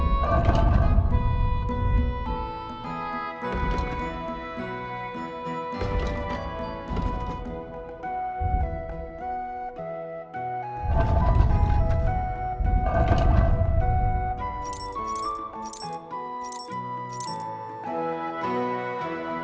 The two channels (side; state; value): both; identical; correlation 1.00